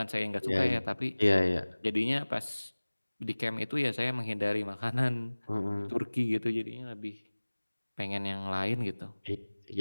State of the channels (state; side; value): inverted; both; correlation -1.00